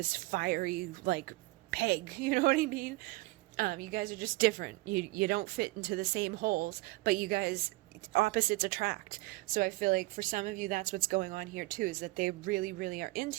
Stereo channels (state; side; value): quieter; left; 21.9 dB